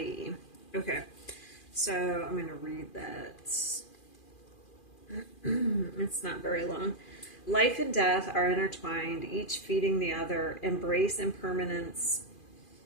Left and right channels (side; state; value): right; late; 2.4 ms